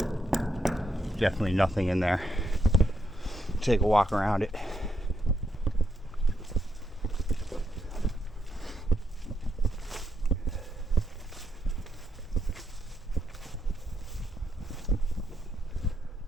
Definitely nothing in there. Take a walk around it.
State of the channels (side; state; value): both; normal; correlation 0.79